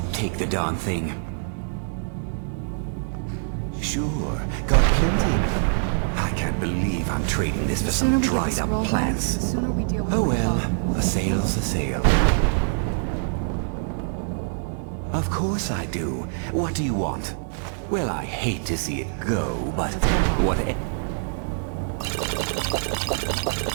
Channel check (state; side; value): silent; left; digital silence